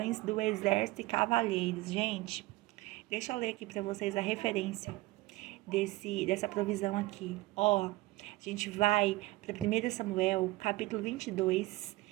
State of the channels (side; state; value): left; quieter; 20.0 dB